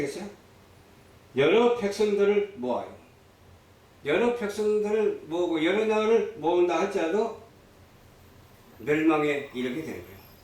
여러 백성들을 모아요. 여러 백성들을 모으고 여러 나라를 모은다 할지라도 멸망에 이르게 되는 거예요.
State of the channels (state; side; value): identical; both; correlation 1.00